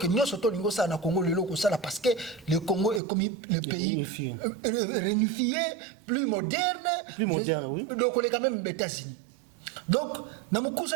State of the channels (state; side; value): drops out; left; at 3.0 s